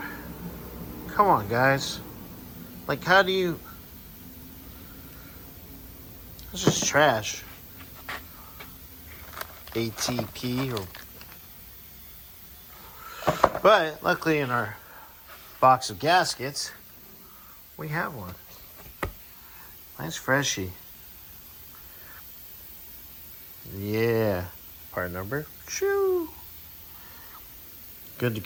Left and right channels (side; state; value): both; identical; correlation 1.00